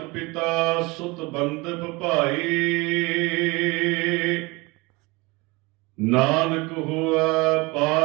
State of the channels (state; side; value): quieter; left; 24.5 dB